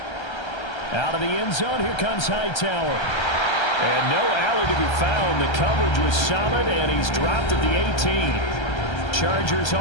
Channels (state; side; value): late; right; 1.3 ms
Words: Out of the end zone, here comes Hightower. And no alley to be found. The coverage was solid, and he's dropped at the 18. Chargers